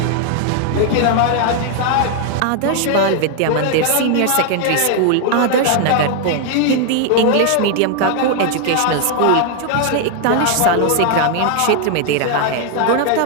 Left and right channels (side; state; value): both; different; correlation 0.00